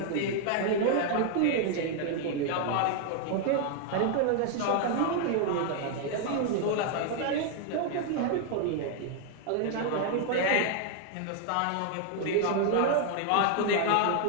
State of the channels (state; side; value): different; both; correlation 0.00